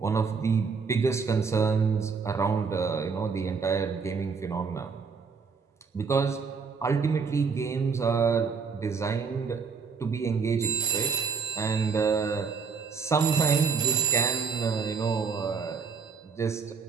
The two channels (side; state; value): left; quieter; 5.5 dB